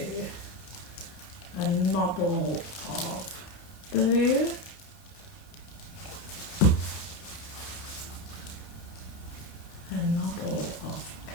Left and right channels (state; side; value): late; right; 30 ms